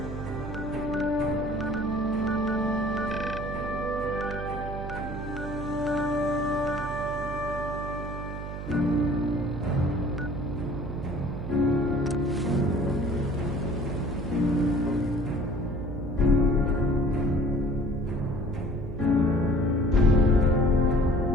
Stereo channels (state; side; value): noise; right; hum, 7 dB below the sound